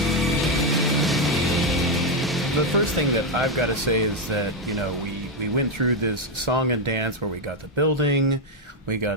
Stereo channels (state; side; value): normal; both; correlation 0.04